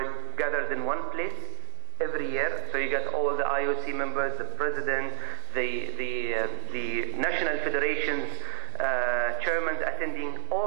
gathered in one place every year. So you get all the IOC members, the president, the national federations, chairmen attending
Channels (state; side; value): silent; left; digital silence